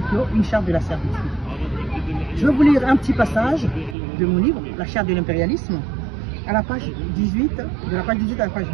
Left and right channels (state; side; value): drops out; left; at 4.0 s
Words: clos, une charte de la servitude. Je vais vous lire un petit passage de mon livre, La Charte de l'impérialisme, à la page 18, de la page 18 à la page